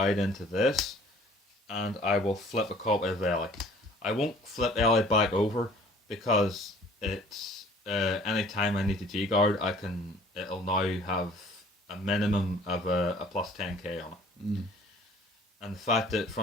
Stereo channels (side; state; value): both; normal; correlation 0.53